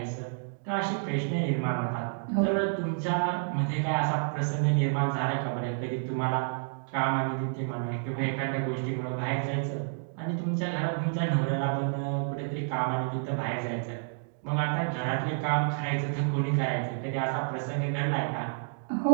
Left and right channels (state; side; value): silent; left; digital silence